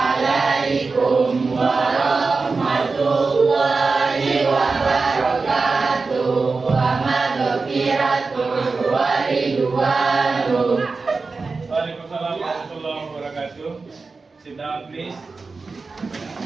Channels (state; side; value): quieter; left; 4.2 dB